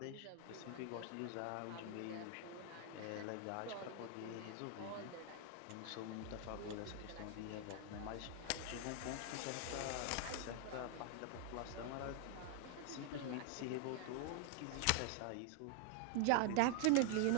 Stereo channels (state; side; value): different; both; correlation 0.00